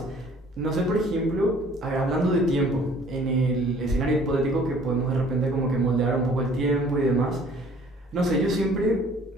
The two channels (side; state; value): both; normal; correlation 0.55